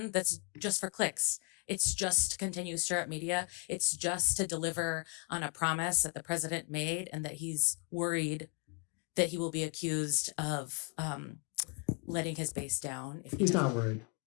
that's just for clicks. It's just to continue to stir up media. It's just to deliver on a promise that the president made and that he's worried that he will be accused of letting his base down. If He's not worried.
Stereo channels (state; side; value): quieter; right; 33.8 dB